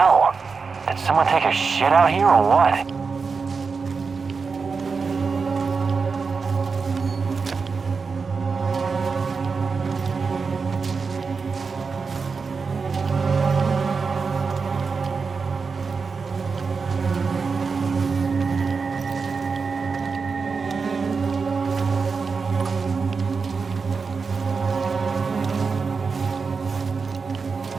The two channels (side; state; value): left; quieter; 5.0 dB